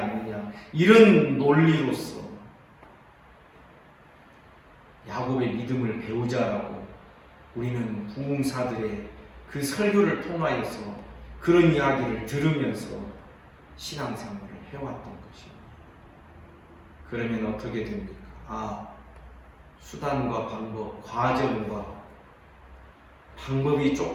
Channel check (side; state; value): both; identical; correlation 1.00